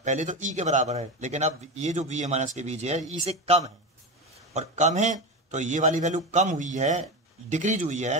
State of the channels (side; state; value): both; normal; correlation 0.20